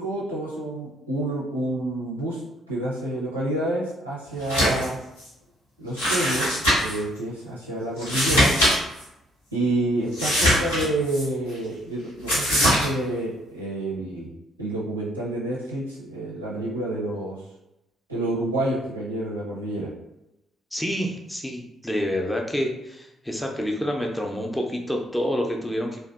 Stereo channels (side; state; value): both; normal; correlation 0.66